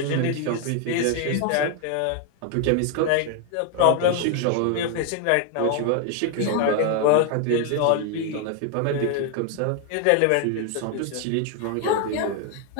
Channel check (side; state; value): both; different; correlation 0.00